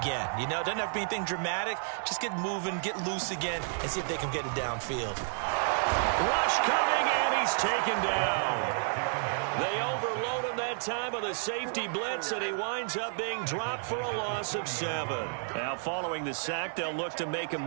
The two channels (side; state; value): left; silent; digital silence